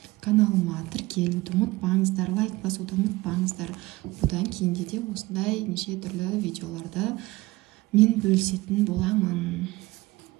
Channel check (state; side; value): quieter; left; 20.3 dB